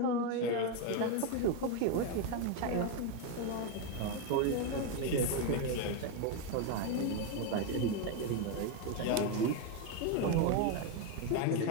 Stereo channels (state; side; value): different; both; correlation 0.02